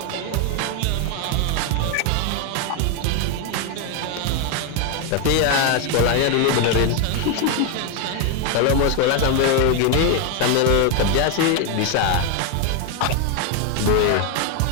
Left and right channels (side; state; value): both; different; correlation 0.01